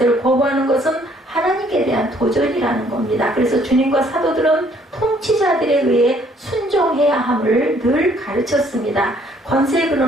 거부하는 것은 하나님께 대한 도전이라는 겁니다. 그래서 주님과 사도들은 통치자들에 의해 순종해야 함을 늘 가르쳤습니다. 권세의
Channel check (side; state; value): both; normal; correlation 0.63